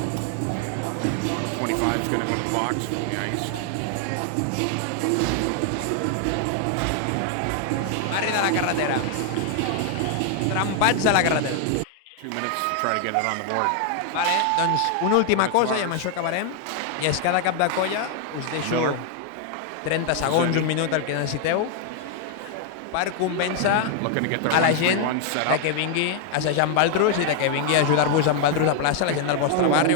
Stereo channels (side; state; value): both; different; correlation 0.00